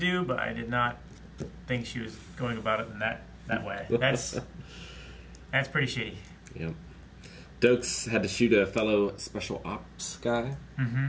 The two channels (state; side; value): identical; both; correlation 1.00